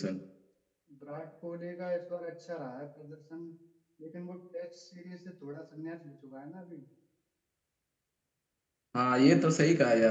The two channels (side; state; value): both; identical; correlation 1.00